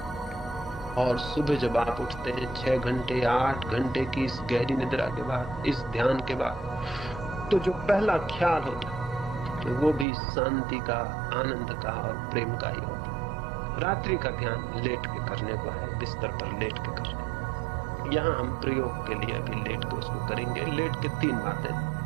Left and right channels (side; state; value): left; drops out; at 10.1 s